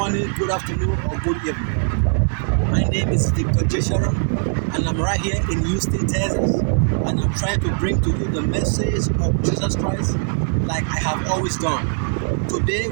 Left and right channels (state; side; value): silent; left; digital silence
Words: good afternoon or good evening. My name is Victor Sharon and I'm right here in Houston, Texas, and I'm trying to bring to you the message of Jesus Christ like I have always done. Today